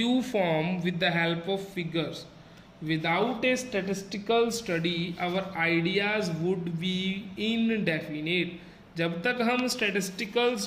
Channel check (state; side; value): identical; both; correlation 1.00